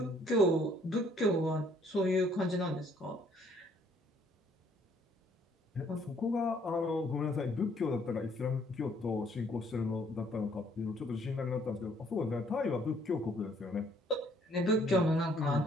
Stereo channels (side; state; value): both; normal; correlation 0.64